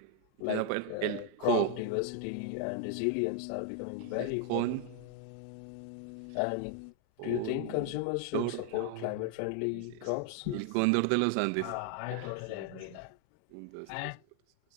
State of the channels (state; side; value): different; both; correlation 0.00